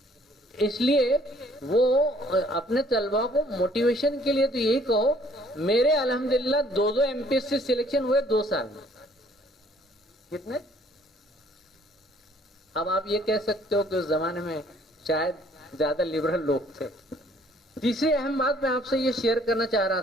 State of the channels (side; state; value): both; normal; correlation 0.60